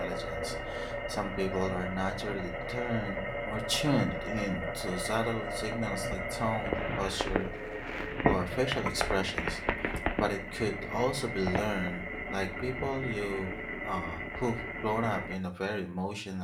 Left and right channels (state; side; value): identical; both; correlation 1.00